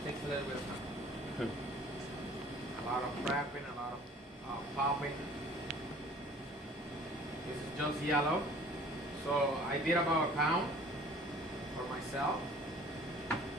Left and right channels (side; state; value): both; normal; correlation 0.51